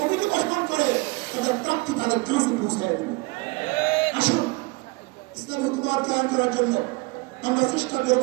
গঠন করে তাদের প্রাপ্তি তাদের কাছে পৌঁছায় দেবে। আসুন ইসলামী হুকুমত কায়েম করার জন্য আমরা চেষ্টা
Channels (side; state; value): left; quieter; 25.5 dB